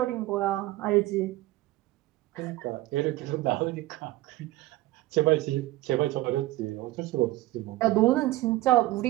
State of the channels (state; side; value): quieter; left; 17.4 dB